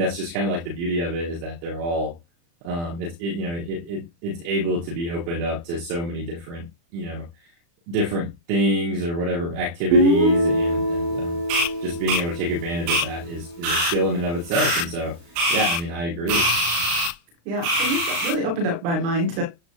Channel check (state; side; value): late; left; 35 ms